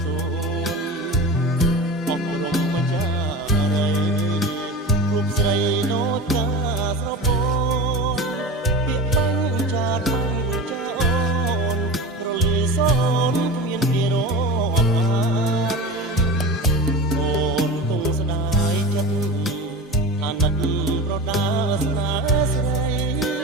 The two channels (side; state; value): both; normal; correlation 0.30